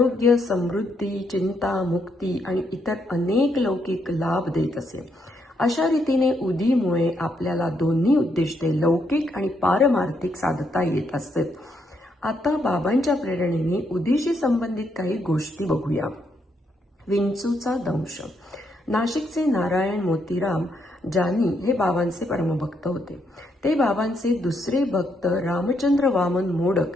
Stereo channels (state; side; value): normal; both; correlation 0.76